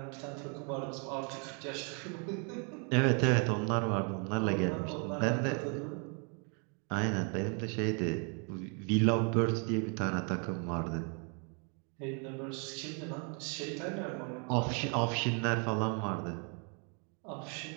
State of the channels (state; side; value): quieter; left; 37.7 dB